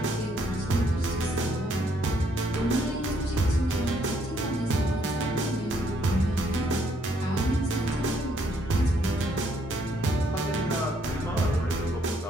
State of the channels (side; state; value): both; normal; correlation 0.70